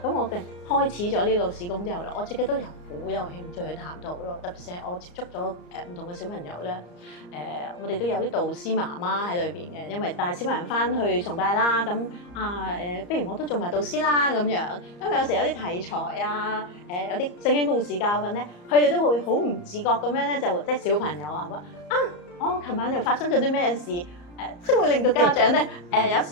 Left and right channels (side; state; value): right; late; 34 ms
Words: 咁我嘅開始咗呢個事工之後咧，我自己都有好有興趣去探討咯。特別係我接觸咗唔同嘅小朋友咧，我哋都有啲導師媽媽喺裏邊嘅，因為帶小朋友翻去崇拜啦，咁不如我都做埋導師啦咁樣。因為有時有啲題材啊，有啲聖經故事教訓咧，佢哋都會好唔自覺咁樣咧，就即係小朋友話我琴晚又發生咗啲咩事？即係會令到家長咧，有